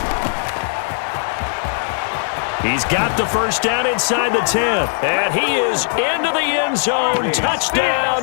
He's got the first down inside the 10. And he is into the end zone. Touchdown,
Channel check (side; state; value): right; silent; digital silence